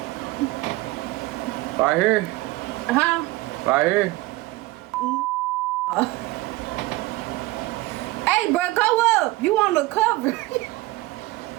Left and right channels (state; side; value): quieter; left; 19.7 dB